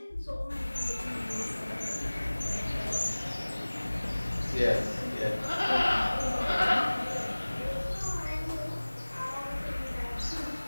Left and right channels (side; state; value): both; inverted; correlation -1.00